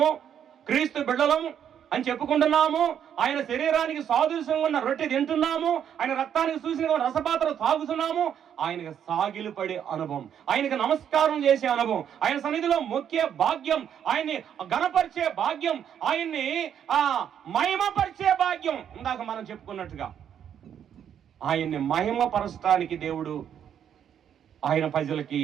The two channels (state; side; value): quieter; left; 9.0 dB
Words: క్రీస్తు బిడ్డలం అని చెప్పుకుంటున్నాము, ఆయన శరీరానికి సాదృశ్యంగా ఉన్న రొట్టె తింటున్నాము, ఆయన రక్తానికి చూసిన రసపాత్ర తాగుతున్నాము. ఆయనకు సాగిలు పడే అనుభవం, ఆయనకు నమస్కారం చేసే అనుభవం, ఆయన సన్నిధిలో మొక్కే భాగ్యం, ఆయన్ని ఘనపరిచే భాగ్యం, ఆయన్ని మహిమపరిచే భాగ్యం. ఇందాక మనం చెప్పుకున్నట్టుగా ఆయన్ని మహిమపరచడానికి దేవుడు